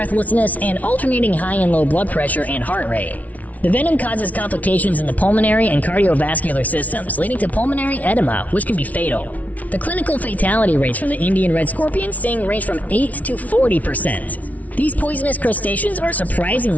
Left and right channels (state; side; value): late; right; 0.071 ms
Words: and alternating high and low blood pressure and heart rate. The venom causes complications in the pulmonary and cardiovascular systems, leading to pulmonary edema, which can be fatal. The clinical fatality rates from the Indian red scorpion sting range from 8 to 40%. These poisonous crustaceans are